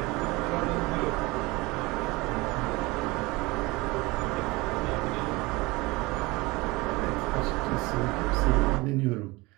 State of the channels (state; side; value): quieter; left; 23.1 dB